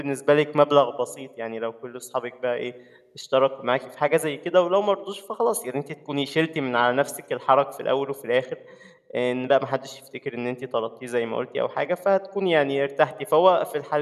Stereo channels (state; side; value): identical; both; correlation 1.00